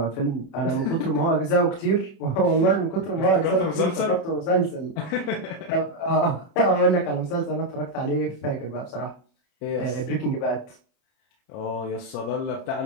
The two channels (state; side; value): late; right; 30 ms